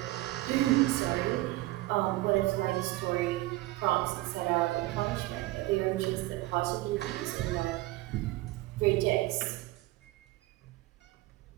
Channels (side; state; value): left; quieter; 18.5 dB